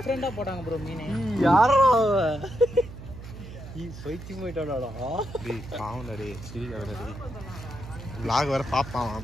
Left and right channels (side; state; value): right; noise; hum, 13 dB below the sound